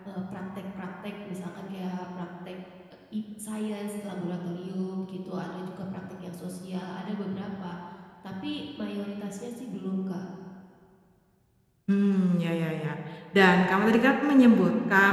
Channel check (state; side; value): identical; both; correlation 1.00